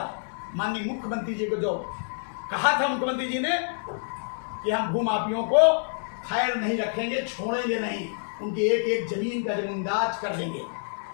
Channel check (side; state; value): right; silent; 60 dB below the other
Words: माननीय मुख्यमंत्री जी को जो कहा था मुख्यमंत्री जी ने कि हम भू माफियों को खैर नहीं रखेंगे, छोड़ेंगे नहीं, उनकी एक एक जमीन का जमींदाज कर देंगे।